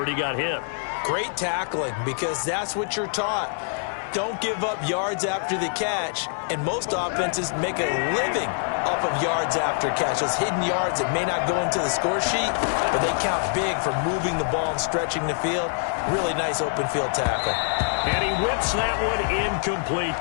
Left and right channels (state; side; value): silent; right; digital silence